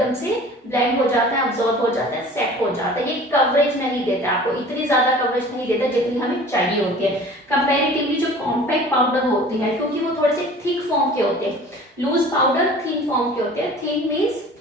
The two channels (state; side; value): normal; both; correlation 0.44